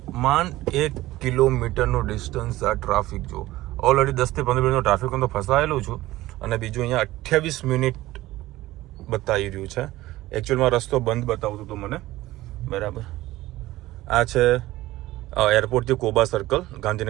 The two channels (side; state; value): left; quieter; 17.0 dB